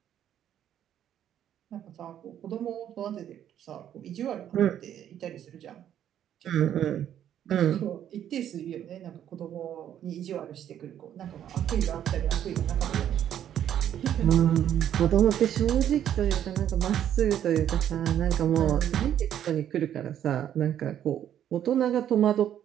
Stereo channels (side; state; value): left; quieter; 10.4 dB